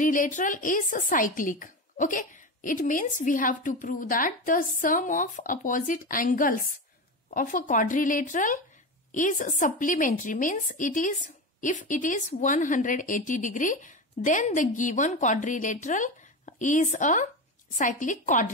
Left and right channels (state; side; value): normal; both; correlation 0.21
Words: is cyclic. Okay, it means we have to prove that the sum of opposite angles of a quadrilateral is supplementary, means it is, if it is 180 degree, then the given quadrilateral is a cyclic